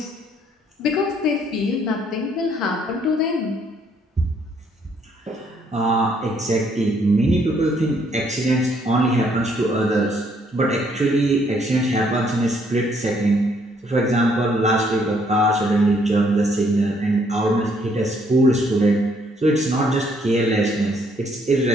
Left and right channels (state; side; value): normal; both; correlation 0.68